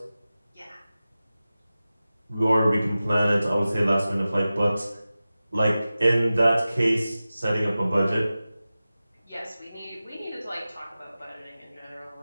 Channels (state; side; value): inverted; both; correlation -0.96